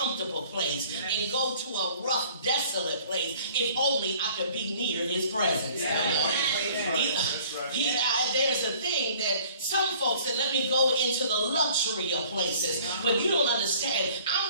place and go to a rough, desolate place if only I could be near his presence. There's a thing that some folks said, let me go into the luxury of places. But you don't understand.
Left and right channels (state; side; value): inverted; both; correlation -0.53